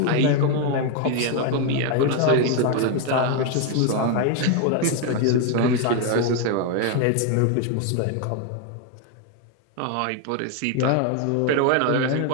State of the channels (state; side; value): different; both; correlation 0.01